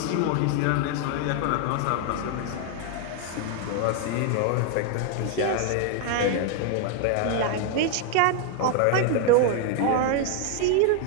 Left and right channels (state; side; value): different; both; correlation 0.00